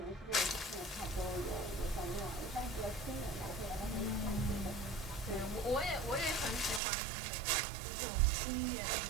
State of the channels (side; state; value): left; drops out; at 6.8 s